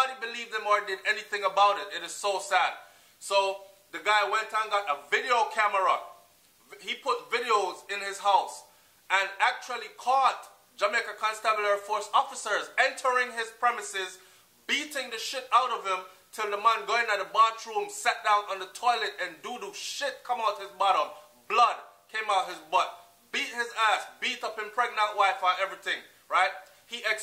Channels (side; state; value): both; identical; correlation 1.00